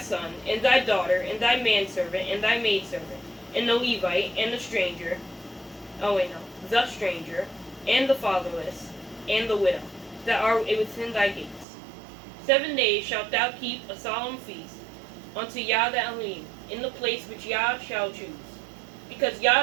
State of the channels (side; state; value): left; drops out; at 11.7 s